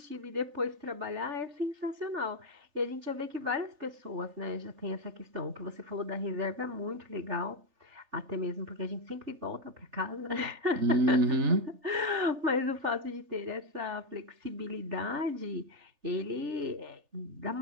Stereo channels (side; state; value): left; late; 3.4 ms